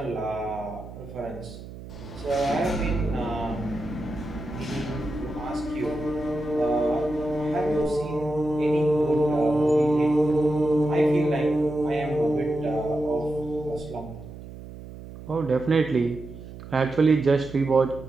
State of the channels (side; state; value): right; noise; hum, 14 dB below the sound